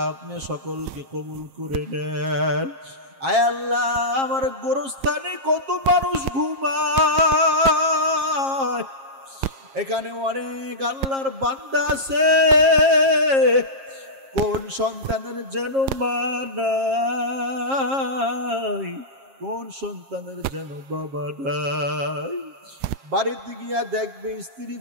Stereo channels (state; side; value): late; left; 7.4 ms